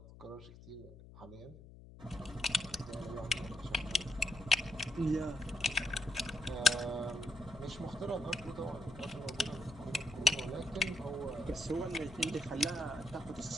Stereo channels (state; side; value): noise; left; hum, 17 dB below the sound